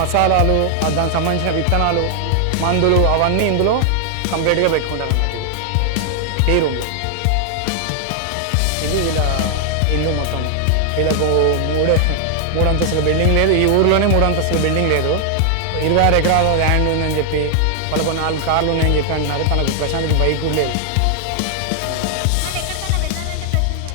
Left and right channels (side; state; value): both; different; correlation 0.00